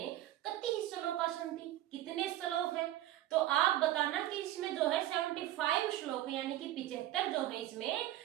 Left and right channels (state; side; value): quieter; left; 14.1 dB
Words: कति श्लोका सन्ति, कितने श्लोक हैं, तो आप बताना कि इसमें जो है 75 श्लोक है, यानी कि 75 जो है इसमें